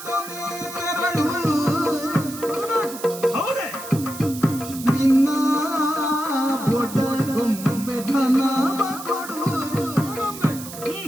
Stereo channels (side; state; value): right; noise; hiss, 12 dB below the sound